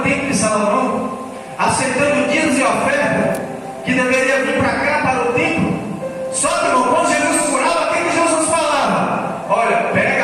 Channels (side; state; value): both; identical; correlation 1.00